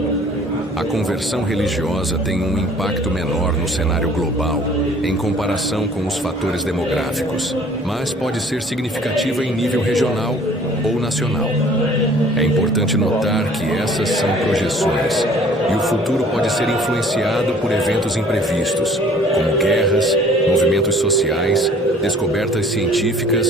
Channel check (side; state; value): both; normal; correlation 0.53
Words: A conversão religiosa tem um impacto menor no cenário global em comparação com os fatores demográficos, mas pode ser significativa em nível regional ou nacional. É importante notar que essas são projeções e o futuro pode ser influenciado por eventos imprevistos, como guerras, movimentos sociais, descobertas